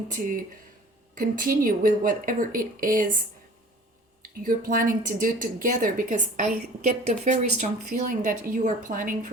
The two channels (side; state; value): both; normal; correlation 0.46